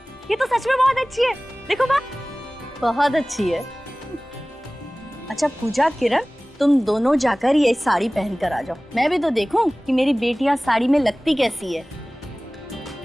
ये तो सच में बहुत अच्छी है। देखो माँ, बहुत अच्छी है। अच्छा पूजा, किरण, तुम दोनों जाकर ये साड़ी पहन कर आ जाओ, मैं भी तो देखूं कि मेरी बेटियां साड़ी में लगती कैसी है।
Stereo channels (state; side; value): normal; both; correlation 0.98